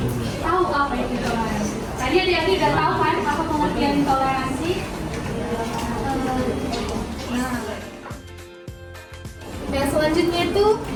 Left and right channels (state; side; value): identical; both; correlation 1.00